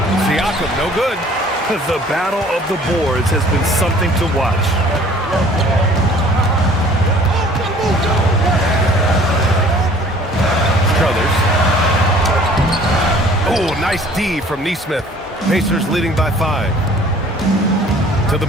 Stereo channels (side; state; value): both; normal; correlation 0.52